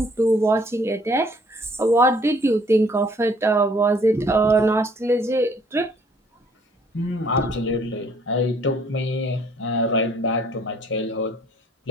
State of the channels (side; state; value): both; normal; correlation 0.60